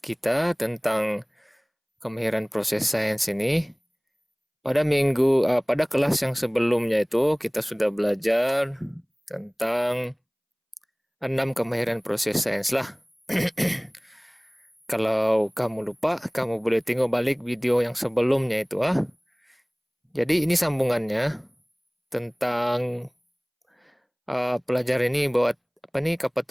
tentang kemahiran proses sains ini. Pada kelas yang sebelumnya itu kita sudah belajar tentang 6 kemahiran proses sains lah. Kalau kamu lupa, kamu boleh tengok balik video yang sebelumnya itu ah. Jadi ini sambungannya tentang pelajar ini buat apa nih kapal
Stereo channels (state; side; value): identical; both; correlation 1.00